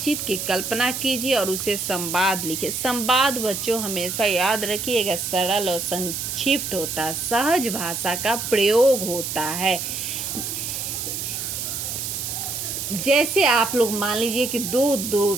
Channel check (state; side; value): noise; right; hiss, 4 dB below the sound